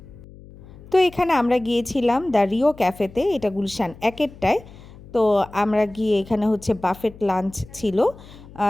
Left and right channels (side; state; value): left; noise; hum, 20 dB below the sound